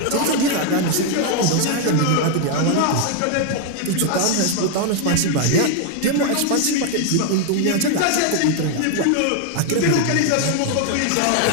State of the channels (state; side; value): different; both; correlation 0.00